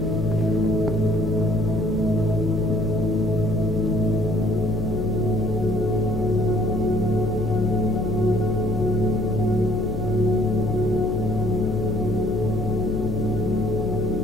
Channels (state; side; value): noise; left; hum, 5 dB below the sound